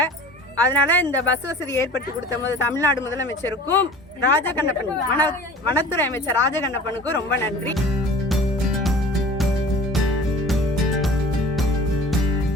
அதனால இந்த பஸ் வசதி ஏற்படுத்தி கொடுத்த போது தமிழ்நாடு முதலமைச்சருக்கும் ராஜகண்ணப்பன் வனத்துறை அமைச்சர் ராஜகண்ணப்பனுக்கும் ரொம்ப நன்றி.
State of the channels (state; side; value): normal; both; correlation 0.43